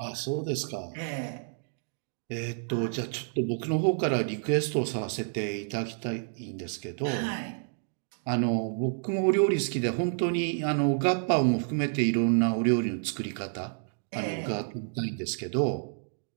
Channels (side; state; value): left; silent; digital silence